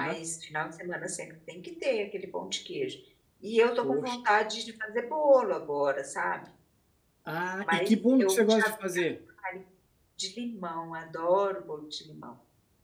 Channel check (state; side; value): identical; both; correlation 1.00